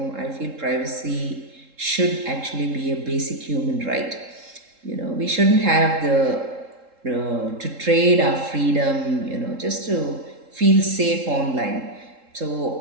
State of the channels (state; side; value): late; left; 3.7 ms